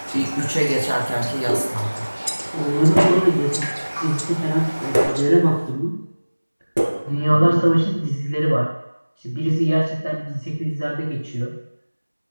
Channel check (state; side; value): inverted; both; correlation -1.00